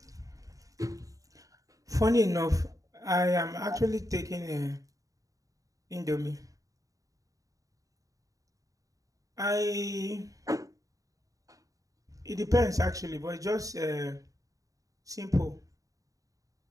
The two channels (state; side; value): late; left; 0.16 ms